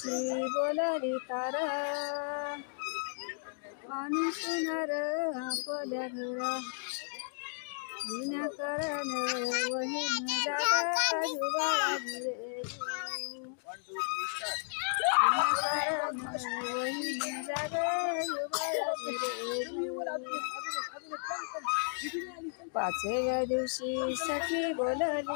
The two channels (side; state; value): right; silent; digital silence